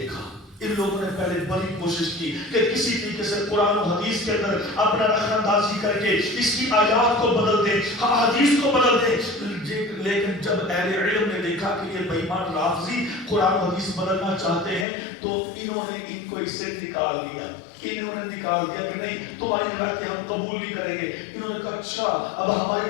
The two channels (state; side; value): drops out; right; at 14.9 s